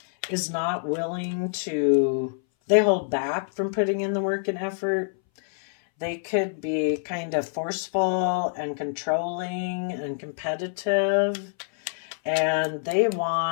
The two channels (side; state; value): right; silent; 60 dB below the other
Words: is not willing to, they hold back from putting in the work and effort. They could be kind of forceful and controlling and competitive, and they